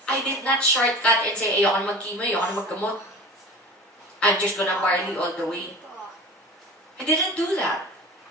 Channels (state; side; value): normal; both; correlation 0.37